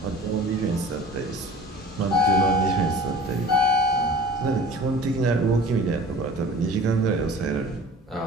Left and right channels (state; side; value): normal; both; correlation 0.43